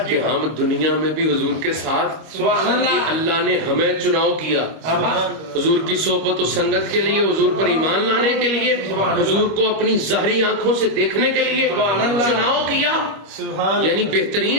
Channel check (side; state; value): left; late; 25 ms